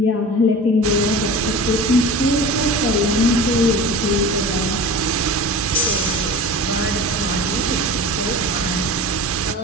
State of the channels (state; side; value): normal; both; correlation 0.35